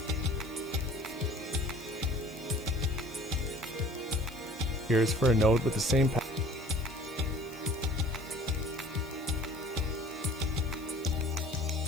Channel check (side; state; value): left; noise; hiss, 22 dB below the sound